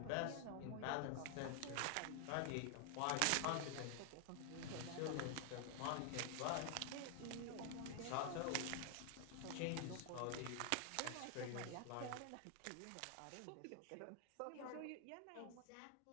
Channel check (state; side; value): different; both; correlation 0.00